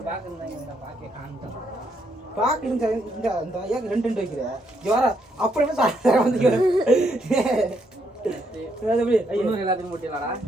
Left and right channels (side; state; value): both; normal; correlation 0.75